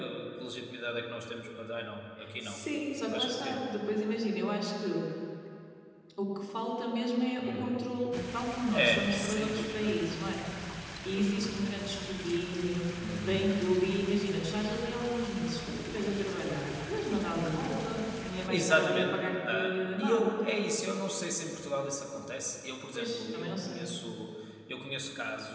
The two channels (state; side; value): identical; both; correlation 1.00